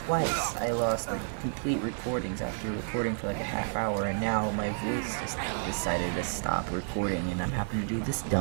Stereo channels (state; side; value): silent; left; 57 dB below the other